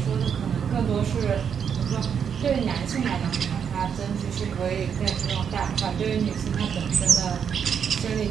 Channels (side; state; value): left; quieter; 7.5 dB